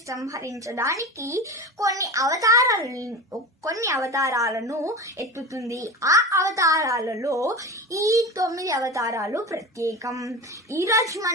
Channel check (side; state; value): both; normal; correlation 0.28